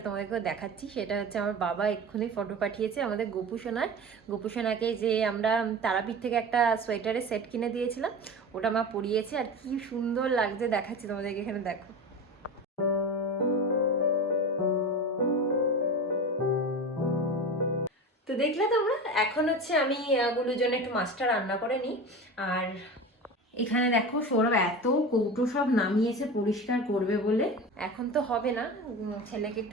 তোমাদেরকেও দেখাচ্ছি। সেটা হচ্ছে আমার বাবা এক্ষুনি ফটো পাঠিয়েছে আমাদের গোপুসোনার। গোপুসোনাকে যে আমরা তারাপীঠ থেকে একটা সোয়েটারের সেট কিনে দিয়েছিলাম, ওটা মা পরিয়েছে। আর কি সুন্দর লাগছে, দেখাচ্ছি তোমাদেরকে, এখানে দেখো। তো দেখলে তোমরা, এখন হচ্ছে আমি গুলোর জন্য একটু মাছটা রান্না করে নিই। আর এখানে দেখো সৌরভ এত কৌটো সব নামিয়েছে পরিষ্কার করবে বলে। এখন তো হবে না, ছেলেকে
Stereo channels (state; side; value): normal; both; correlation 0.29